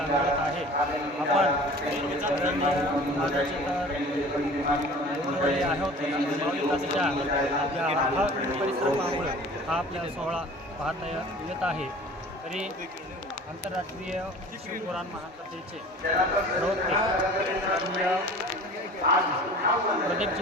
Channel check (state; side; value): normal; both; correlation 0.43